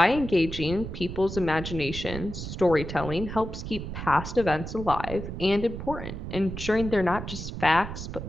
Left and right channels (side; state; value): right; noise; rumble, 8 dB below the sound